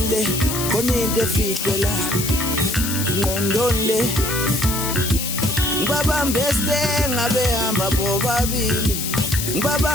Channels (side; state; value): left; noise; hiss, 3 dB below the sound